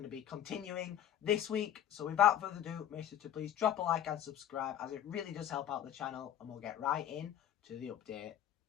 to be continuing this week. So without further ado, make sure to please drop a like and subscribe, as it really does help out the channel, and we'll get right in to the update.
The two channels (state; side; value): quieter; right; 10.7 dB